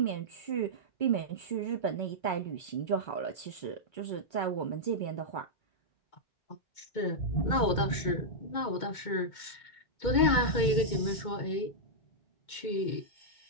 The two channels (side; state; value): right; late; 2.2 ms